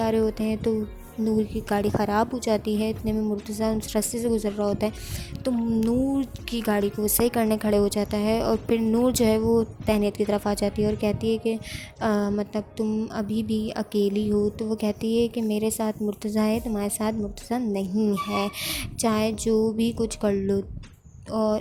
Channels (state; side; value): identical; both; correlation 1.00